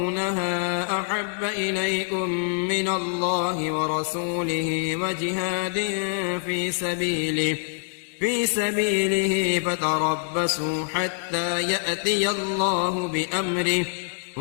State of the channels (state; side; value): silent; right; digital silence